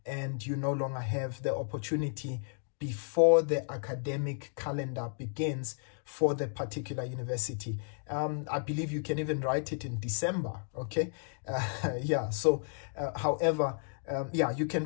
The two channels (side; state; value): right; silent; digital silence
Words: and you no longer have the opportunity before the academic calendar begins for the particular university. I believe you can even write it in December, okay? Yeah, so however, yeah, you can